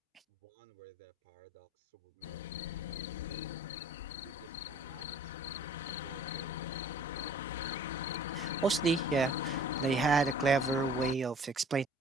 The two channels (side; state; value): both; normal; correlation 0.50